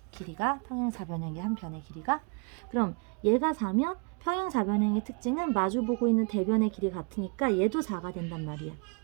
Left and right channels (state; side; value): quieter; left; 36.4 dB